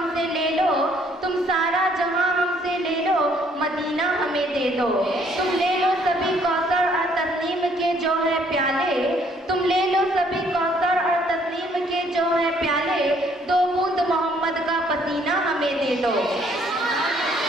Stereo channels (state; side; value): normal; both; correlation 0.64